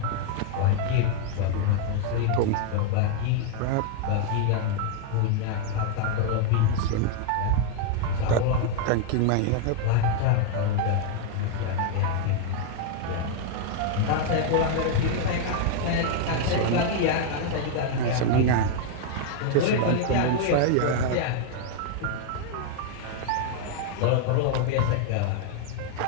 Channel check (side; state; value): both; different; correlation 0.00